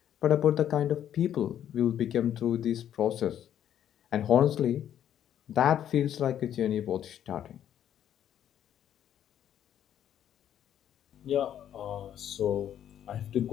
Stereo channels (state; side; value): quieter; right; 10.3 dB